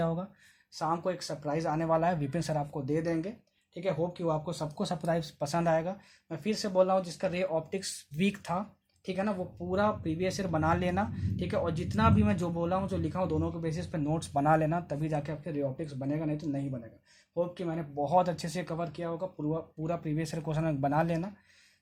होगा। शाम को एक सरप्राइज आने वाला है, विपिन सर आपको दे देंगे। ठीक है, होप कि वो आपको सबको सरप्राइज पसंद आएगा। मैं फिर से बोल रहा हूँ, जिसका रे ऑप्टिक्स वीक था, ठीक है ना, वो पूरा प्रीवियस ईयर बना लेना। ठीक है, और जितना भी मैं जो बोला हूँ, जो लिखा हूँ, दोनों के बेसिस पे नोट्स बना लेना, तभी जाके आपके रे ऑप्टिक्स बनेगा, नहीं तो नहीं बनेगा। होप कि मैंने बहुत अच्छे से कवर किया होगा, पूरा प्रीवियस ईयर क्वेश्चन बना लेना।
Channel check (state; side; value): identical; both; correlation 1.00